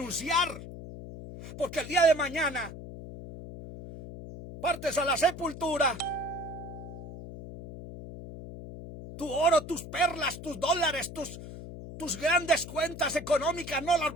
Porque el día de mañana partes a la sepultura. Tu oro, tus perlas, tus dólares, tus grandes cuentas económicas no las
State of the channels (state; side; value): noise; left; hum, 12 dB below the sound